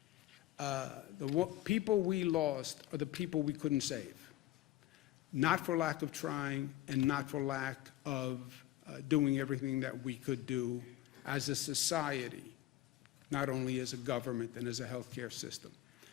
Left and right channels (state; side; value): quieter; right; 15.1 dB